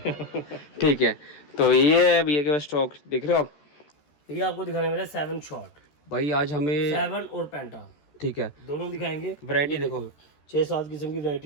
ठीक है, तो ये है भैया के पास स्टॉक, देख रहे हो आप? ये आपको दिखाने वाले 7 शॉट भाई आज हमें 7 और पेंटा ठीक है दोनों दिखाएंगे। वैरायटी देखो, 6-7 किस्म की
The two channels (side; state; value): right; late; 13 ms